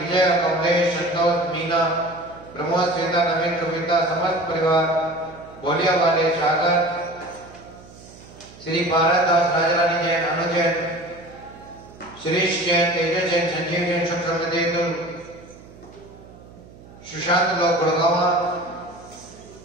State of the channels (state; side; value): noise; right; hum, 21 dB below the sound